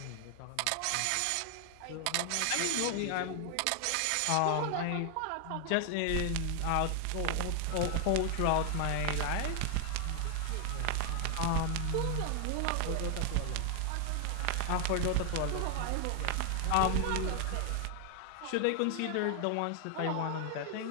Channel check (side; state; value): both; different; correlation 0.00